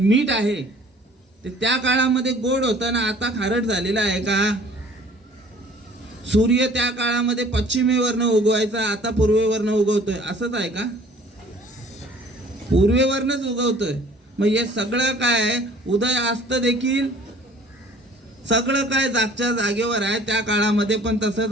आहे ते त्या काळामध्ये गोड होतं ना आता खारट झालेलं आहे का? सूर्य त्या काळामध्ये पश्चिमेवरनं उगवायचा, आता पूर्वेवरनं उगवतोय, असंच आहे का? पूर्वेवरनच उगवतोय. मग हे सगळं काय उदय अस्त देखील सगळं काय जागच्या जागेवर आहे. त्या काळामध्ये पण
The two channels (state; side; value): normal; both; correlation 0.52